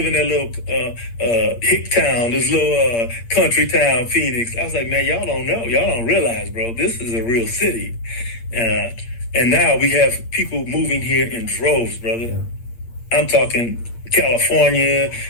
in that little hick town, this little country town, Phoenix? I was like, man, y'all don't know, y'all don't realize, bro. This is a real city, and now we have people moving here in droves, brother. I'm talking California,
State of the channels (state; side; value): late; right; 8.7 ms